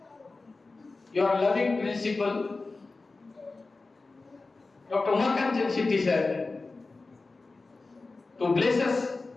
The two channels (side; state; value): right; quieter; 3.6 dB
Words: your loving principal, Dr. Umakant Shetty sir, to bless us